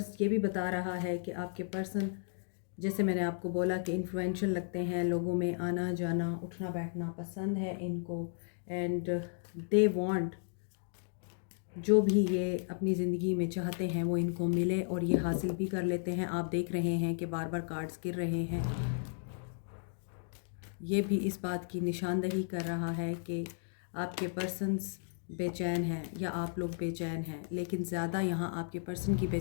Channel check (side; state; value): right; silent; digital silence